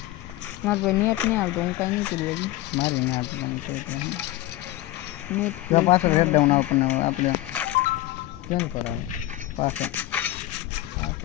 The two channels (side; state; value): right; quieter; 16.6 dB